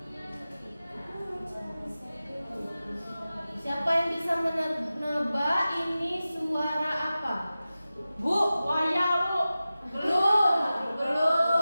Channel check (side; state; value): both; inverted; correlation -0.95